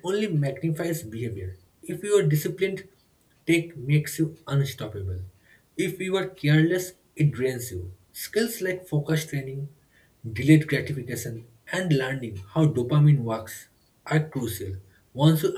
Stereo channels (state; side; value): identical; both; correlation 1.00